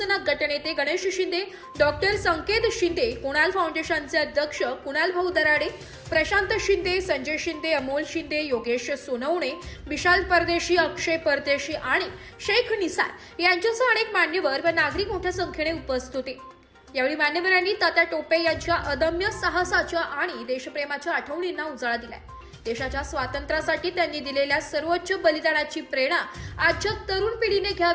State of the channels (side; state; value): both; identical; correlation 1.00